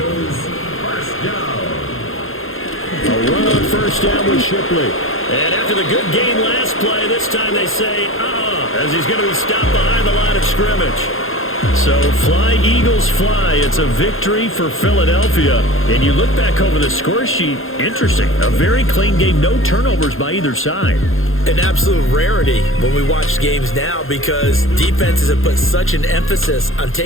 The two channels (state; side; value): late; right; 0.60 ms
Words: 1st down. A run on 1st down with Shipley. And after the good gain last play, this time they say, as he's going to be stopped behind the line of scrimmage. So fly, Eagles, fly. It's a victory for Philadelphia. And you look back over the score sheet, interesting. A very clean game, no turnovers by either side. An absolute rarity when we watch games now because defenses have put such an emphasis on